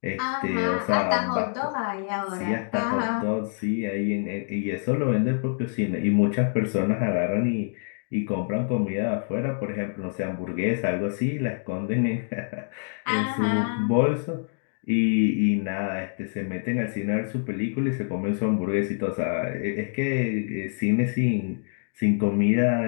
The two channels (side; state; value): right; silent; 61 dB below the other